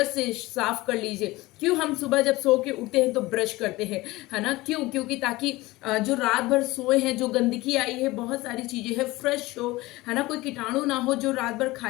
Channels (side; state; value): right; quieter; 19.9 dB